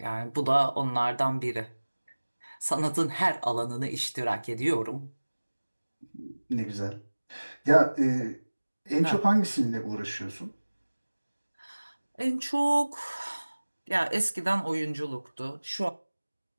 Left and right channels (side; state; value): both; inverted; correlation -1.00